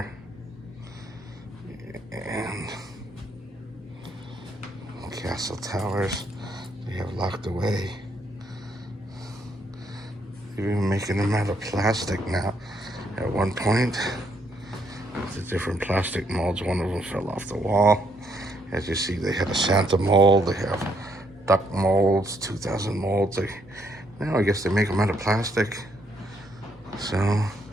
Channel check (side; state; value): both; normal; correlation 0.72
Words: And castle towers they have locked away. They're even making them out of plastic now. At one point, the different plastic molds, one of them fell off the wall. As you see, they had a Santa mold, they have duck molds, 2000 molds. Now I guess they make them out of plastic. So,